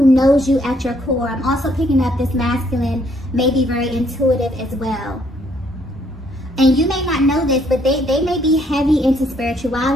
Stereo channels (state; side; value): normal; both; correlation 0.68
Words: knows you at your core. I'm also picking up this masculine, maybe very intuitive as well. And you may not know this, but they may be heavy into